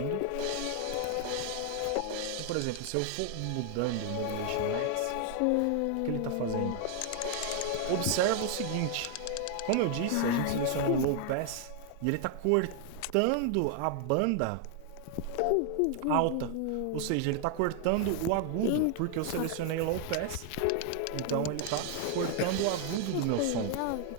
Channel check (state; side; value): different; both; correlation 0.00